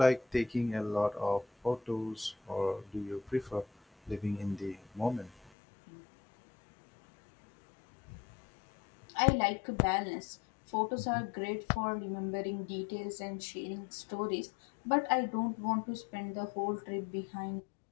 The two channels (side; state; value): right; drops out; at 5.5 s